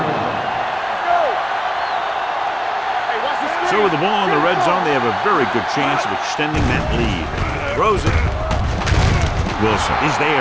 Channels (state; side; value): identical; both; correlation 1.00